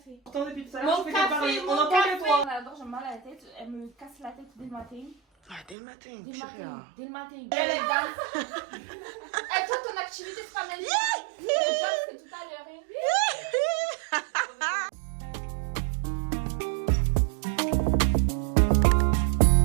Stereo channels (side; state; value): left; drops out; at 5.8 s